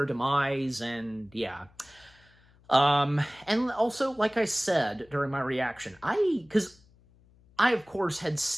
demise, and yeah. And also, like I said during my reaction, because I, of course, had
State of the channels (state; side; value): noise; left; hum, 29 dB below the sound